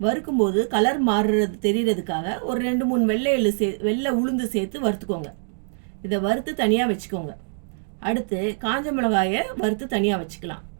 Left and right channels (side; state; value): left; silent; digital silence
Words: வறுக்கும்போது கலர் மாறுறது தெரியறதுக்காக ஒரு 2-3 வெள்ளை உளுந்து சேர்த்து வறுத்துக்கோங்க. இதை வறுத்து தனியாக வச்சுக்கோங்க. அடுத்து காஞ்ச மிளகாயை வறுத்து தனியாக வச்சுக்கலாம்.